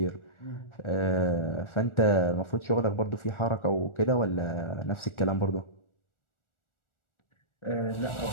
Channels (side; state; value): right; late; 1.4 ms